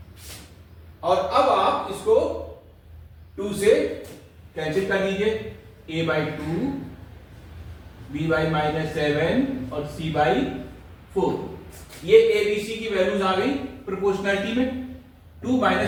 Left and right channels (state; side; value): identical; both; correlation 1.00